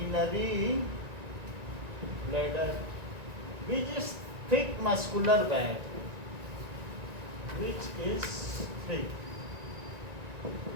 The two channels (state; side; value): late; left; 1.9 ms